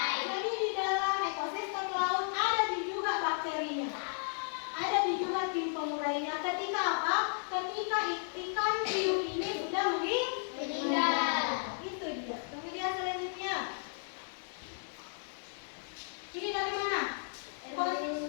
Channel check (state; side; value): silent; right; 55 dB below the other